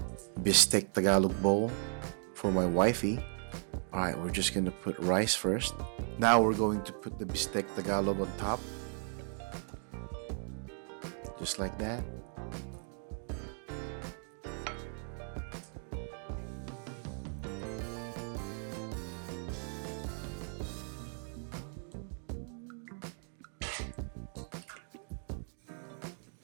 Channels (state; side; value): silent; left; 54 dB below the other